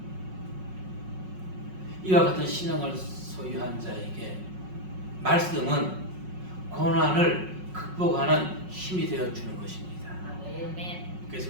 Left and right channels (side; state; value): left; late; 5.4 ms